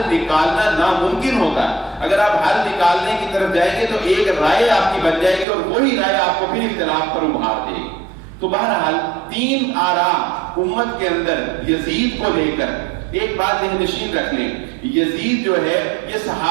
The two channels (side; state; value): left; drops out; at 5.5 s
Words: نکالنا ناممکن ہوتا ہے. اگر آپ حل نکالنے کی طرف جائیں گے تو ایک رائے آپ کی بن جائے گی اور وہی رائے آپ کو پھر اختلاف پر ابھار دے گی. تو بہرحال 3 آرا امت کے اندر یزید کو لے کر ایک بات ذہن نشین رکھ لیں، یزید جو ہے یہ